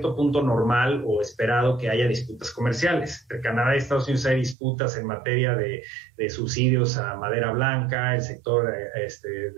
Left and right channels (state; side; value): drops out; left; at 4.5 s